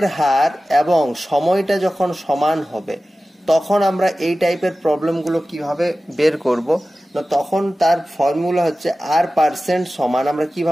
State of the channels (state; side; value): normal; both; correlation 0.95